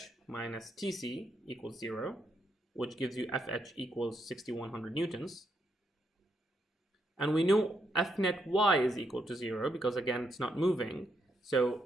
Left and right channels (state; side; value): normal; both; correlation 0.79